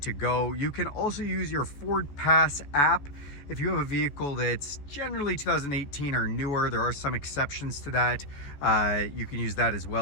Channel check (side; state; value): right; late; 14 ms